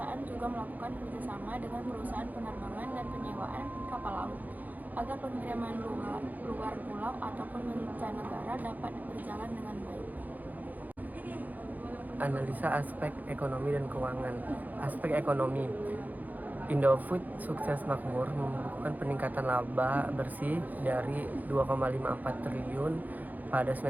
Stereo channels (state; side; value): late; left; 0.082 ms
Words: juga melakukan kerjasama dengan perusahaan penerbangan dan penyewaan kapal laut agar pengiriman luar pulau ataupun mancanegara dapat berjalan dengan baik. Analisa aspek ekonomi dan keuangan. Aspek ekonomi. Indofood Sukses Makmur membukukan peningkatan laba bersih dari 2,54 triliun pada